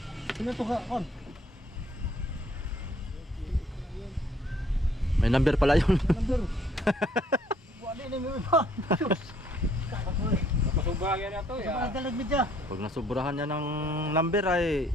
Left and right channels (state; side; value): normal; both; correlation 0.63